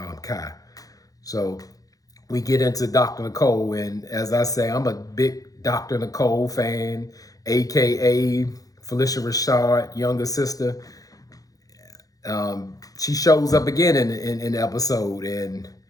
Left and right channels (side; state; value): right; late; 0.17 ms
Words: Kai. So we get into Dr. Nicole, and as I say, I'm a big Dr. Nicole fan, AKA Felicia Rashad, younger sister. She shows up again in the episode, and